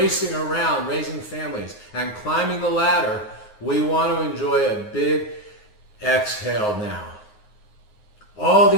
around, raising families, and climbing the ladder, we want to enjoy a big exhale now. All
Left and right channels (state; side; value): late; right; 9.5 ms